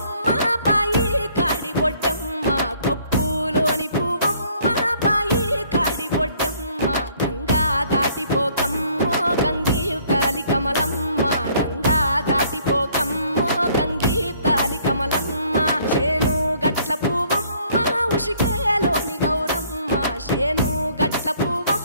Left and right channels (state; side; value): inverted; both; correlation -0.61